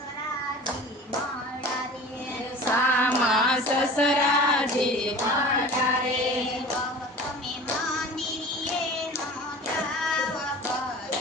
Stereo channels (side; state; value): both; normal; correlation 0.40